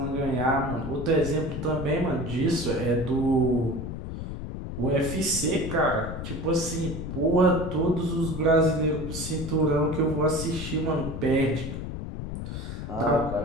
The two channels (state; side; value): noise; left; rumble, 6 dB below the sound